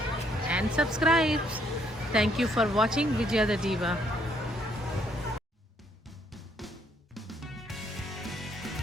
and subscribe. Thank you for watching Vijaya the Diva.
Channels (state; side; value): normal; both; correlation 0.69